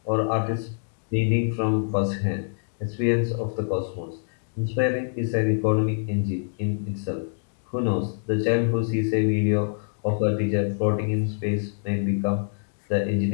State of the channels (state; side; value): silent; right; digital silence